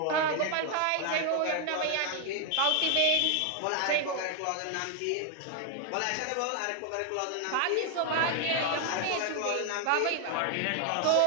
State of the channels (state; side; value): different; both; correlation 0.00